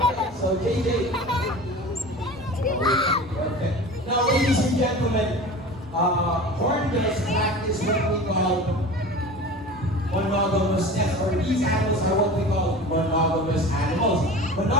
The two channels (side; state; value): both; normal; correlation 0.36